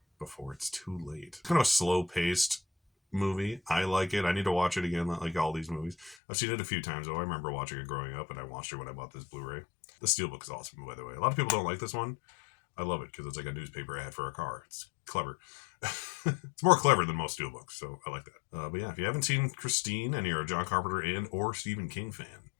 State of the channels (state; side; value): drops out; right; at 6.2 s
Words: before it's too late. Kind of a slow paced movie. I like it. I need to watch it again, like all these movies. I've seen it a few times, though. I remember watching it growing up, and I watched it when I bought this Blu-ray. The Steelbook is awesome, by the way. A lot of people don't like this one. I love it because it's like a newspaper ad for a car. It's clever. It's more clever than most Steelbooks, so I like that. But yeah, if you haven't seen Christine and you're a John Carpenter and or Stephen King fan,